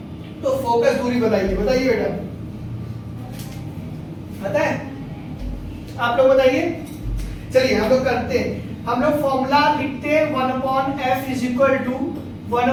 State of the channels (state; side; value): identical; both; correlation 1.00